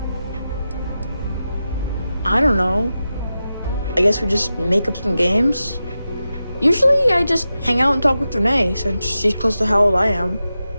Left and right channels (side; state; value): both; inverted; correlation -0.91